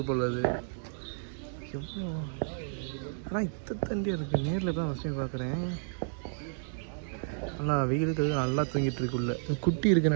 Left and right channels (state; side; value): silent; left; digital silence